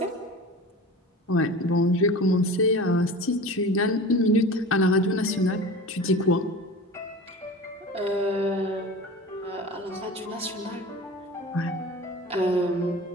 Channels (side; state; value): both; normal; correlation 0.35